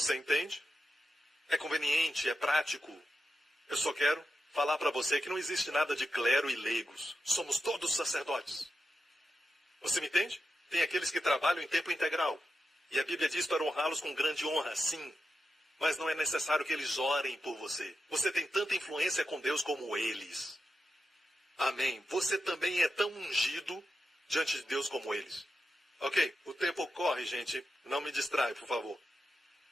entende? É conveniente, é prático. Eu só quero falar para você que não existe nada de clero e leigos. Somos todos sacerdotes. Você me entende? Tem aqueles que trabalham em tempo integral. E a Bíblia diz para honrá-los com grande honra, sim. Mas não é necessário que eles orem por você. Você tem tanta influência com Deus como eles. Amém. Você também é tão ungido diante de Deus como eles. Ok? O tempo corre, gente. Não me distrai, por favor.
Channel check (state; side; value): normal; both; correlation 0.88